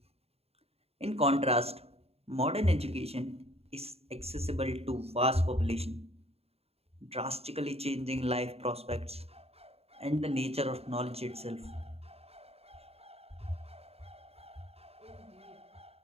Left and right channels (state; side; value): late; left; 0.29 ms